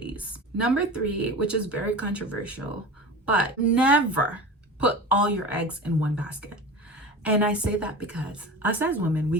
Number 3, which is very controversial, but never put all your eggs in one basket. And I say that because us as women, we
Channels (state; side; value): normal; both; correlation 0.32